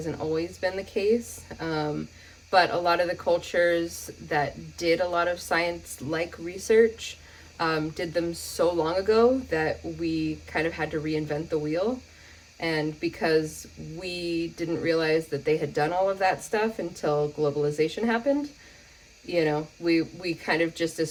always been the case. But a lot of the cultures that did a lot of science-like research did them so long ago that we kind of had to reinvent the wheel. And because we didn't realize that they had done all of that stuff until globalization happened, you know, we kind of just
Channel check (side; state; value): both; identical; correlation 1.00